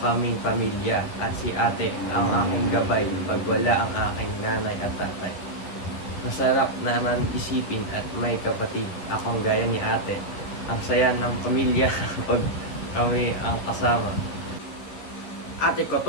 pamilya, at si ate ang aking gabay pag wala ang aking nanay at tatay. Masarap naman isipin at may kapatid akong gaya ni ate. Ang saya ng pamilya pag kami ang kasama. Ate ko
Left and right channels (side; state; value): right; late; 11 ms